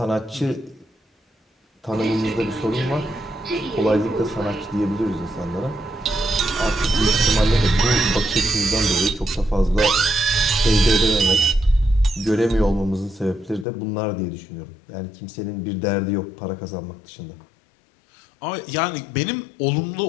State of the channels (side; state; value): right; drops out; at 13.7 s